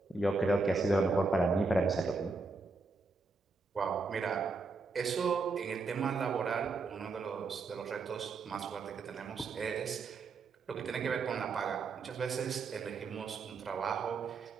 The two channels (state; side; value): quieter; left; 4.0 dB